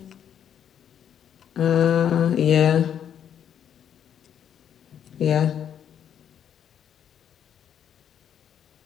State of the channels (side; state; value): right; quieter; 9.1 dB